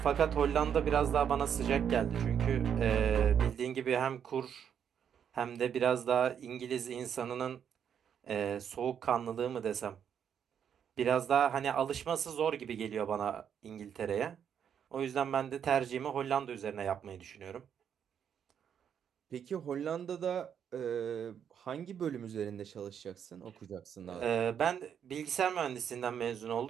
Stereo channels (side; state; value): left; quieter; 8.3 dB